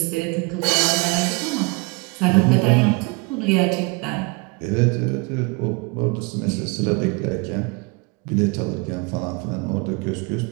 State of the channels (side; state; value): left; quieter; 28.8 dB